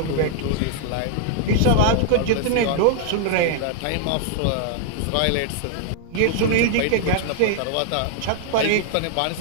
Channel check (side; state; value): both; different; correlation -0.01